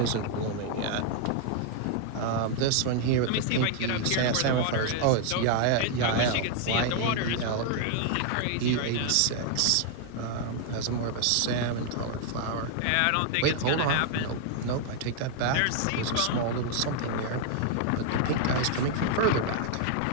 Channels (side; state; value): both; different; correlation 0.00